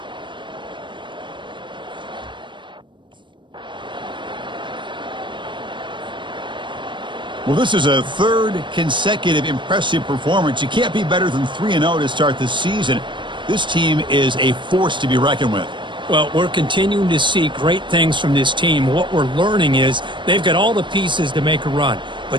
Well, this is a third consecutive impressive performance. You can't be better than 3-0 to start the season. This team is a force to be reckoned with. Well, we're continuing to see great things from this team. What we're learning is they've got all the pieces to make a run,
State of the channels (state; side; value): late; left; 0.23 ms